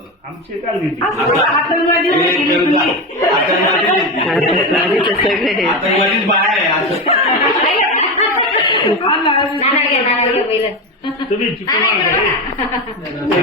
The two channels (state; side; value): normal; both; correlation 0.18